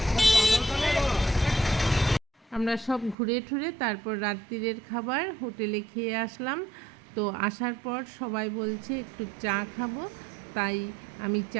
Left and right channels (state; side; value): drops out; left; at 3.2 s